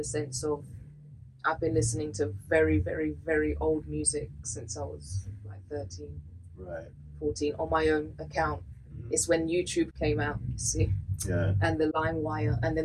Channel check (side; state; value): both; identical; correlation 1.00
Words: sense of I've been listening to very, very, very old music since I was like 13, Right. 14 on my own account. It's when YouTube came out, you see, Yeah. and the LimeWire, and